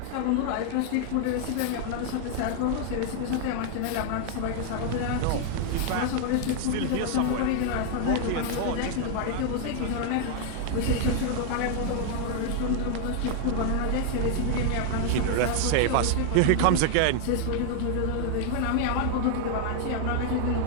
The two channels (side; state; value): both; different; correlation 0.00